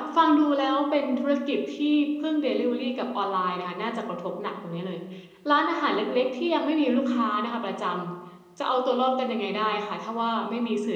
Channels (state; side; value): identical; both; correlation 1.00